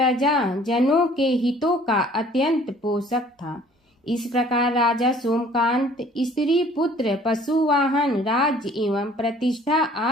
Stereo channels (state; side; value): normal; both; correlation 0.54